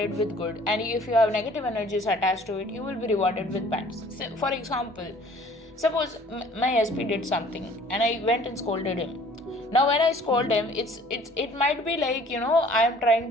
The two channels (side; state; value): both; normal; correlation 0.53